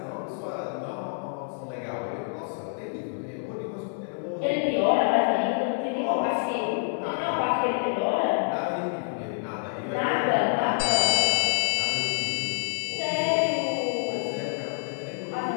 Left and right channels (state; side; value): silent; right; 60 dB below the other